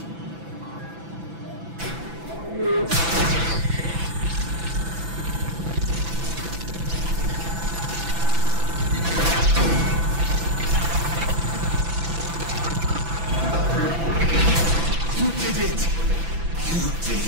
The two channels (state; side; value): late; left; 6.0 ms